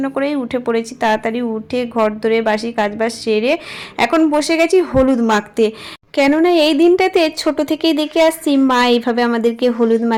করেই উঠে পড়েছি। তাড়াতাড়ি উঠে ঘর ধরে বাসি কাজবাজ সেরে এখন বসে গেছি হলুদ মাখতে। কেননা এই দিনটাতে ছোট থেকেই দেখে আসছি মা এইভাবে আমাদেরকে হলুদ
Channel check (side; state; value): both; identical; correlation 1.00